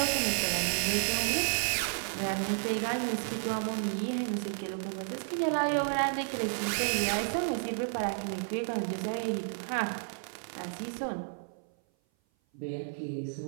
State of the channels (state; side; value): silent; left; 55 dB below the other